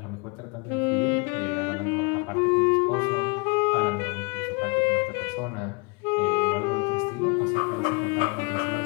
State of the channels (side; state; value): right; quieter; 30.4 dB